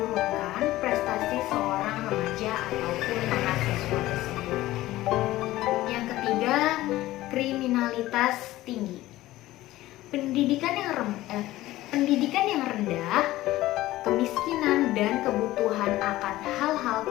prestasi seorang remaja ataupun mahasiswa. pendidikan yang rendah, kemiskinan, dan kebutuhan akan hal-hal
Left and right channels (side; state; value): right; quieter; 16.4 dB